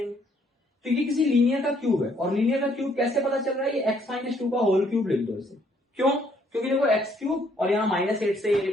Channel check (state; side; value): normal; both; correlation 0.67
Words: तो ये किसी लीनियर का क्यूब है और लीनियर का क्यूब कैसे पता चल रहा है, ये x-2 का होल क्यूब लिख दो इसे। क्यों, क्योंकि देखो x³ और यहाँ -8 से